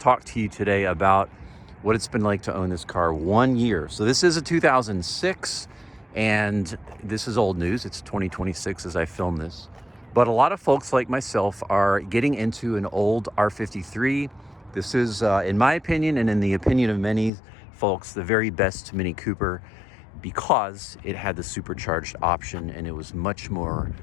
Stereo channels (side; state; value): right; drops out; at 17.3 s